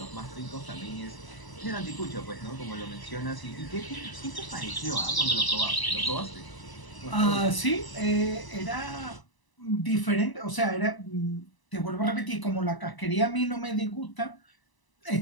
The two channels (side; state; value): right; late; 1.0 ms